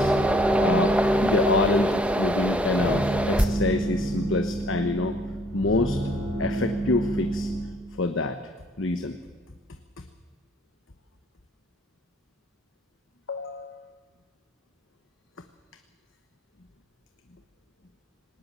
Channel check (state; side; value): normal; both; correlation 0.61